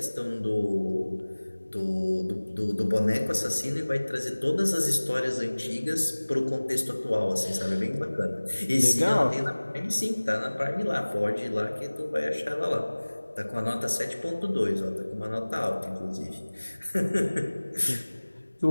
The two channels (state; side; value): inverted; both; correlation -1.00